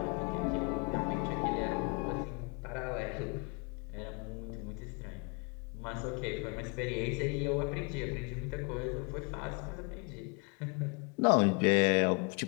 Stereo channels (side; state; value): right; quieter; 33.3 dB